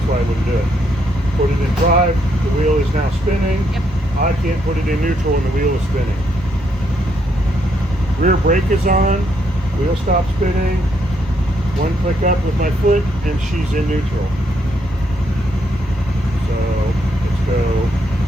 why I wouldn't do it. Put it in drive, the wheel is now spinning. Yep. I can't put it in neutral and the wheel is spinning. Rear brake is on, wheel stops spinning. 1 click up with my foot and she's in neutral. So let's go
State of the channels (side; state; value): both; normal; correlation 0.75